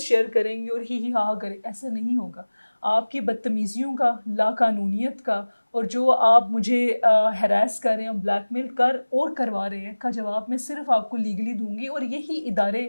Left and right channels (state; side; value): inverted; both; correlation -1.00